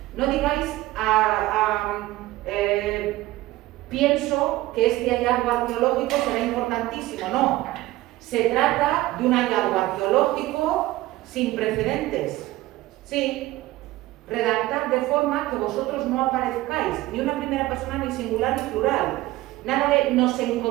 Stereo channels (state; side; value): quieter; left; 17.6 dB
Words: No digáis pienso que este hallazgo arqueológico será importantísimo, no. Se trata de un hallazgo arqueológico sin precedentes. Sí, redactad de forma que vosotros no aparezcáis, ni una primera persona, ni singular, ni plural. Nada de nos